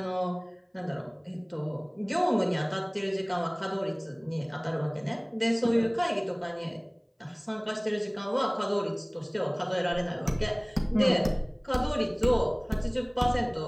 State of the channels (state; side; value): identical; both; correlation 1.00